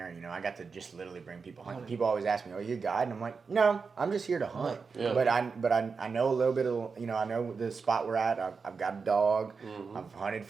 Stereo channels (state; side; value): quieter; left; 5.1 dB